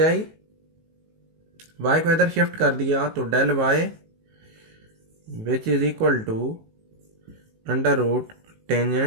आई। y को इधर शिफ्ट कर दिया तो del y which is equal to under root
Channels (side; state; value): left; late; 19 ms